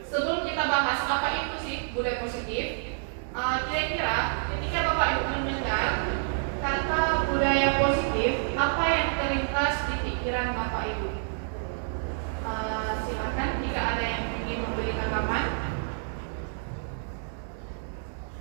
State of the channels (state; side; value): silent; left; digital silence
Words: sebelum kita bahas apa itu sih budaya positif, kira-kira ketika Bapak Ibu mendengar kata budaya positif, apa yang terlintas di pikiran Bapak Ibu? Silakan jika ada yang ingin memberi tanggapan.